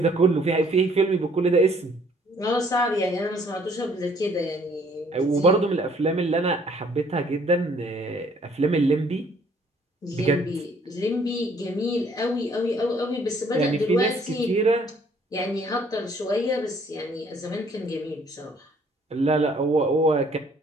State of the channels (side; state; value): both; normal; correlation 0.61